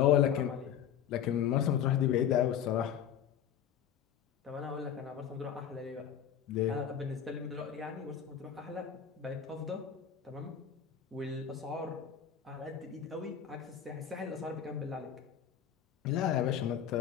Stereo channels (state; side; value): quieter; right; 9.0 dB